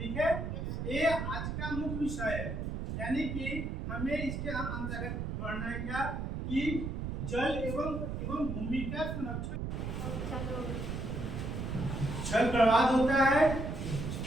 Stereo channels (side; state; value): right; noise; rumble, 4 dB below the sound